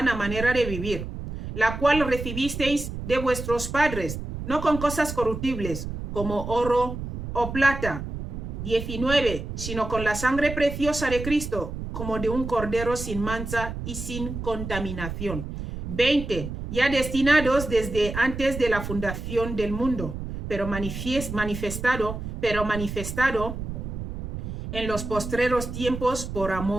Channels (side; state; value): right; noise; rumble, 7 dB below the sound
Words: manera de vivir, la cual recibisteis de vuestros padres, no con cosas corruptibles, como oro o plata. 19. Sino con la sangre preciosa de Cristo, como de un cordero sin mancha y sin contaminación. 20. Ya destinados desde antes de la fundación del mundo, pero manifestado en los postreros tiempos por